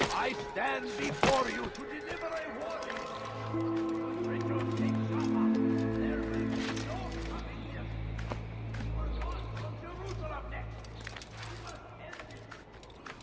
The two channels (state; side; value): identical; both; correlation 1.00